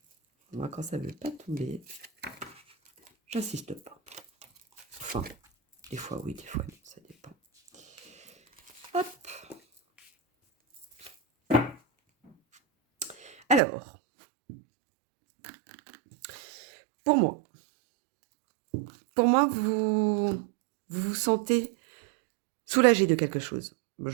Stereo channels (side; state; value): left; drops out; at 13.6 s